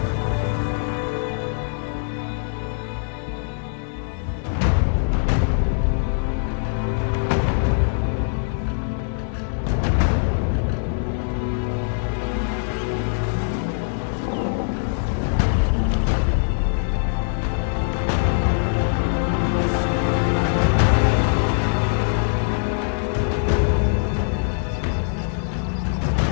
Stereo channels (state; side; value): silent; right; digital silence